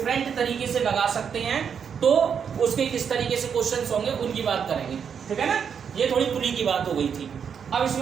तरीके से लगा सकते हैं, तो उसके किस तरीके से क्वेश्चंस होंगे उनकी बात करेंगे। ठीक है ना, ये थोड़ी पुली की बात हो गई थी। अब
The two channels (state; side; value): quieter; left; 7.2 dB